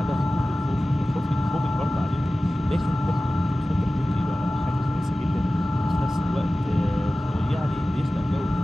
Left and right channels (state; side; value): normal; both; correlation 0.96